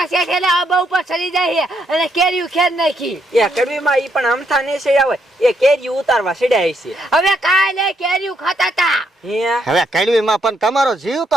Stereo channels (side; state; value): both; normal; correlation 0.76